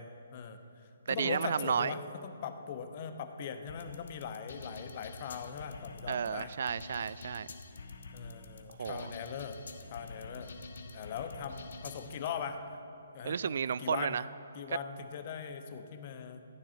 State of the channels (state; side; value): inverted; both; correlation -0.66